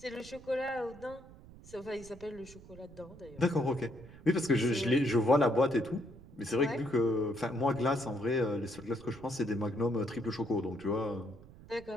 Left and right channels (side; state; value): right; noise; rumble, 19 dB below the sound